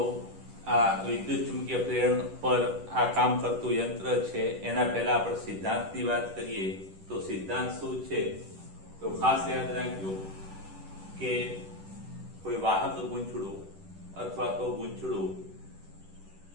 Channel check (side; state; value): left; late; 10 ms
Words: આ વિદ્યુત ચુંબકીય પ્રેરણ પર આ કામ કરતું યંત્ર છે. એના પહેલા આપણે સિદ્ધાંતની વાત કરીએ તો સિદ્ધાંત શું છે તો ખાસ યાદ રાખજો કે કોઈ વાહક ગૂંચળું અથવા તો ગૂંચળું